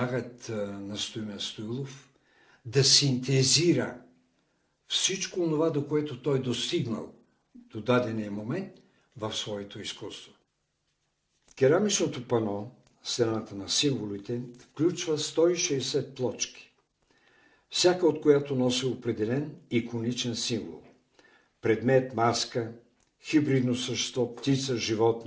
на Стоимен Стоилов да синтезира всичко това, до което той достигнал до дадения момент в своето изкуство. Керамичното пано, стената на символите, включва 160 плочки, всяка от която носи определен иконичен символ. Предмет, маска, хибридно същество, птица,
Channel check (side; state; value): both; identical; correlation 1.00